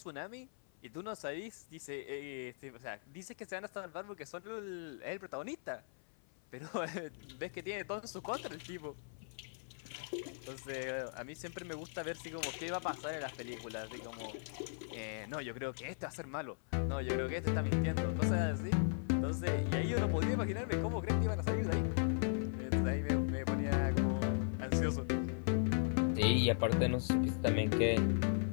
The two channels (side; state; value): right; silent; 52 dB below the other